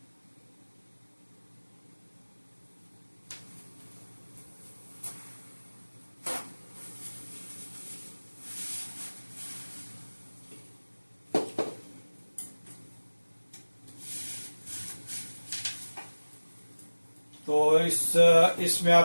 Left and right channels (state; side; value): inverted; both; correlation -1.00